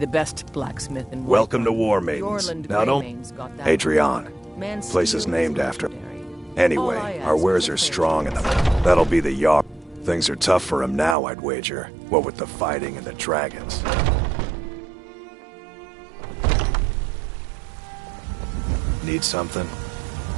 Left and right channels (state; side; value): drops out; left; at 11.2 s